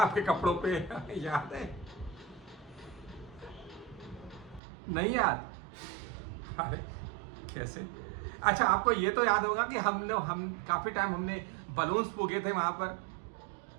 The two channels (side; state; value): left; drops out; at 4.6 s